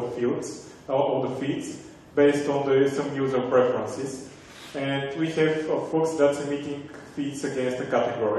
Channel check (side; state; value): both; identical; correlation 1.00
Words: the feeds based on some user preferences. And we have a Fox that's emitting feeds against a